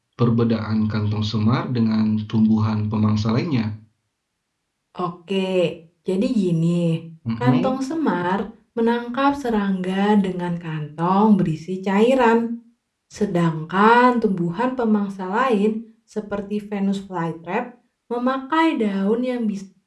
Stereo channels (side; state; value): both; identical; correlation 1.00